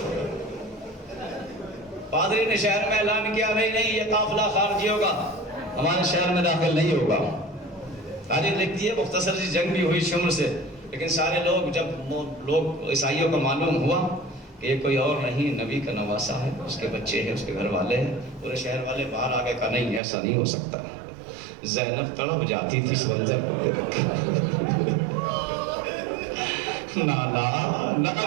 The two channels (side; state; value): left; drops out; at 20.0 s